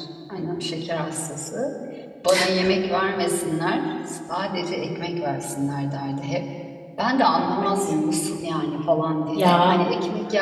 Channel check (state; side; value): identical; both; correlation 1.00